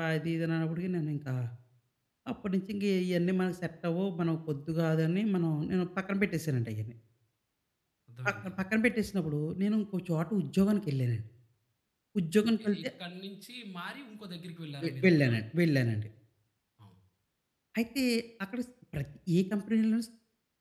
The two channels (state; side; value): identical; both; correlation 1.00